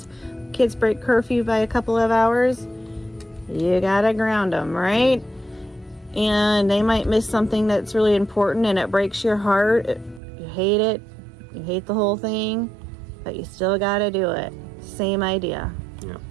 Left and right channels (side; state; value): left; drops out; at 10.2 s